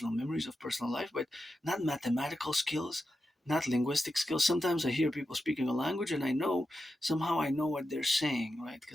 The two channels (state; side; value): normal; both; correlation 0.90